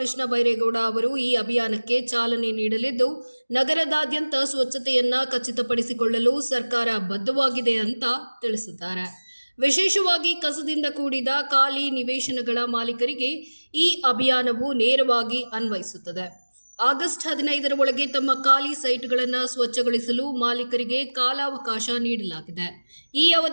ಬೈರೇಗೌಡ ಅವರು ಈ ಅಭಿಯಾನಕ್ಕೆ ಚಾಲನೆ ನೀಡಲಿದ್ದು, ನಗರದಾದ್ಯಂತ ಸ್ವಚ್ಛತೆಯನ್ನ ಖಚಿತಪಡಿಸಿಕೊಳ್ಳಲು ಸರ್ಕಾರ ಬದ್ಧವಾಗಿದೆ ಅಂತ ತಿಳಿಸಿದ್ದಾರೆ. ವಿಶೇಷವಾಗಿ ಕಸದಿಂದ ಕೂಡಿದ ಖಾಲಿ ನಿವೇಶನಗಳ ಮಾಲೀಕರಿಗೆ ಈ ಅಭಿಯಾನವು ನೇರವಾಗಿ ಅನ್ವಯಿಸುತ್ತದೆ. ಆಗಸ್ಟ್ 15ರ ಒಳಗೆ ತಮ್ಮ ಖಾಲಿ ಸೈಟ್ಗಳನ್ನು ಸ್ವಚ್ಛಗೊಳಿಸಲು ಮಾಲೀಕರಿಗೆ ಕಾಲಾವಕಾಶ ನೀಡಲಾಗಿದೆ. ಈ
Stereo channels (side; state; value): both; inverted; correlation -1.00